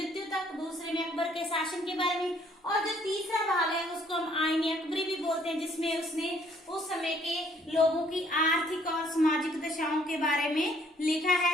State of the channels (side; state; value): both; normal; correlation 0.63